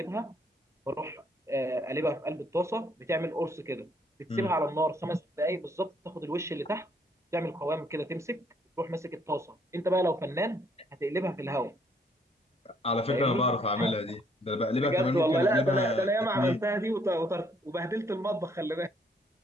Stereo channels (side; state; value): both; normal; correlation 0.67